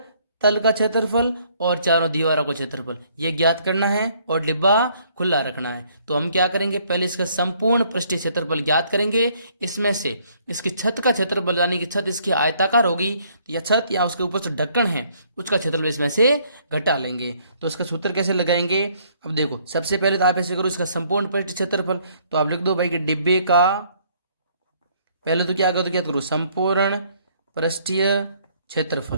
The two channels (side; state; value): both; inverted; correlation -0.65